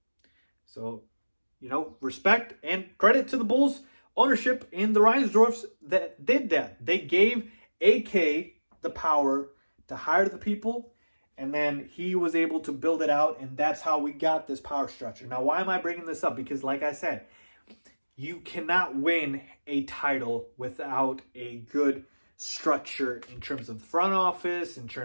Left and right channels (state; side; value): inverted; both; correlation -1.00